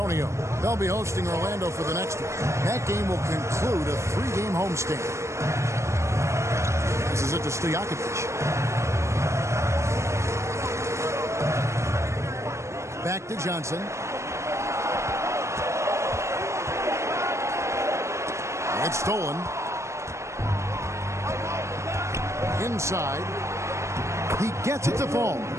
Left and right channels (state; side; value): late; left; 0.14 ms